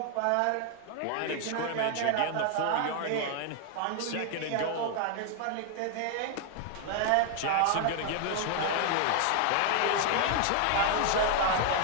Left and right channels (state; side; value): different; both; correlation 0.00